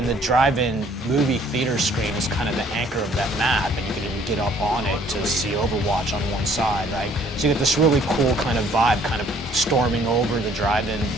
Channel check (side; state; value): both; normal; correlation 0.59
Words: movie theater screen is kind of the anchor of that map, and you can even get up on it to see Overwatch on one side, right? So you get this really cool kind of vibe, kind of storming over the drive-in